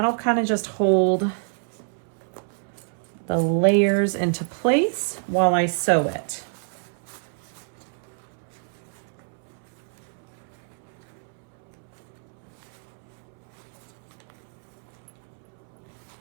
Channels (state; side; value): silent; left; 60 dB below the other